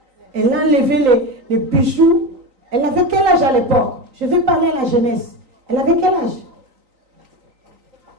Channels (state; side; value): late; left; 3.9 ms